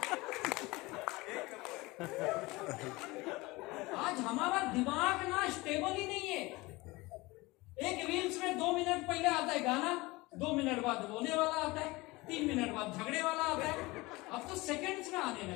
आज हमारा दिमाग ना स्टेबल ही नहीं है। एक रील्स में 2 मिनट पहले आता है गाना, 2 मिनट बाद रोने वाला आता है, 3 मिनट बाद झगड़े वाला आता है। अब तो सेकंड्स में आने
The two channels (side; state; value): right; quieter; 22.2 dB